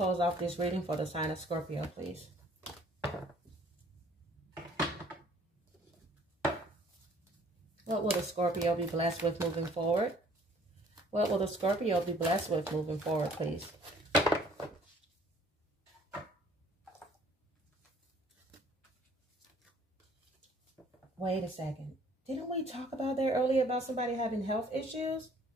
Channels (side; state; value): both; normal; correlation 0.57